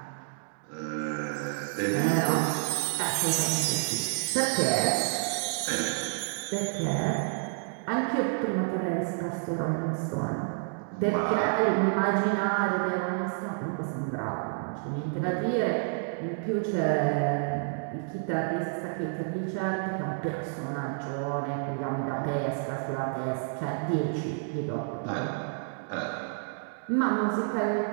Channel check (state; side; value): silent; left; digital silence